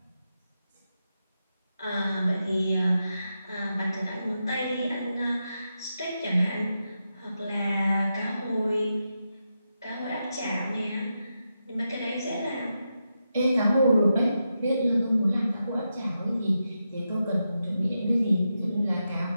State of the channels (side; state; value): both; inverted; correlation -0.87